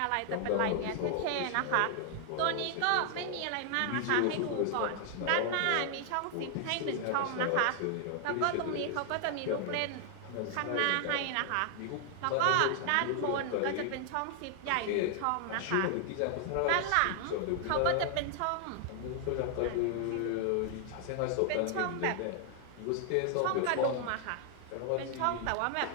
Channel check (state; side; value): different; both; correlation 0.00